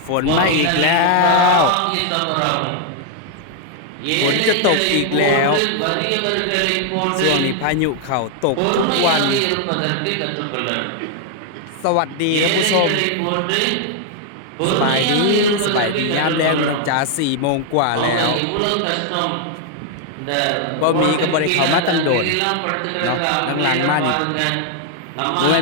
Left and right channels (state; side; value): different; both; correlation 0.00